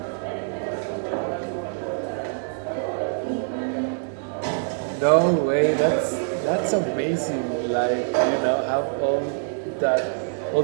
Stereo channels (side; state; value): left; silent; digital silence